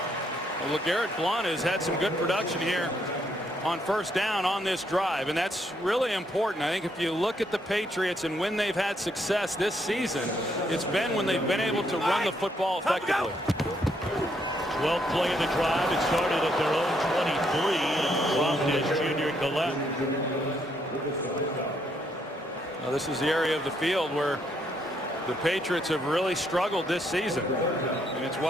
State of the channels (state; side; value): normal; both; correlation 0.73